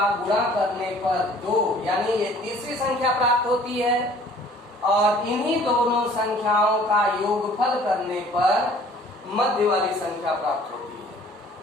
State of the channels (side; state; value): both; normal; correlation 0.53